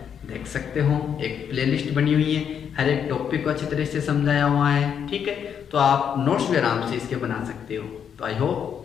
देख सकते हो। एक प्लेलिस्ट बनी हुई है, हर एक टॉपिक को अच्छी तरह से समझाया हुआ है, ठीक है। तो आप नोट्स भी आराम से इसके बना सकते हो। तो आई होप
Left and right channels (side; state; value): right; quieter; 8.0 dB